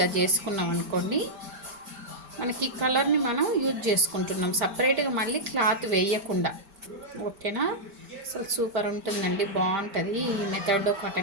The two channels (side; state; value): left; late; 5.1 ms